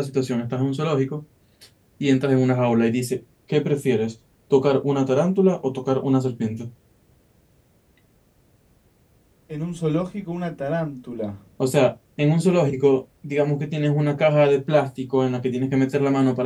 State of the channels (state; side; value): identical; both; correlation 1.00